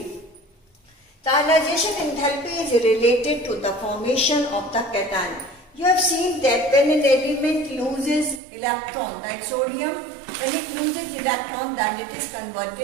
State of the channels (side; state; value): left; drops out; at 8.4 s